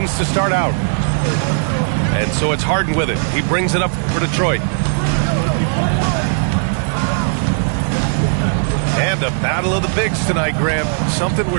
to start out. And so it's Harden with it. He brings it up for Detroit. And a battle of the bigs tonight, Graham. Something we're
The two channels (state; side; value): silent; left; 60 dB below the other